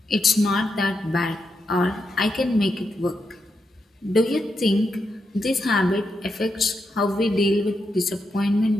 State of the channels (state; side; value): normal; both; correlation 0.84